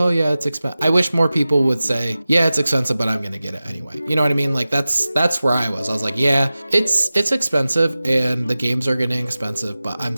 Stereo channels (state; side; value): inverted; both; correlation -0.96